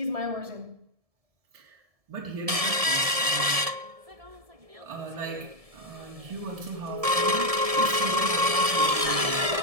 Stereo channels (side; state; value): left; late; 1.7 ms